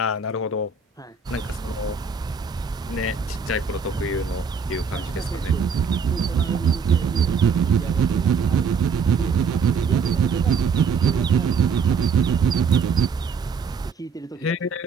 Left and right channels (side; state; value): left; quieter; 5.5 dB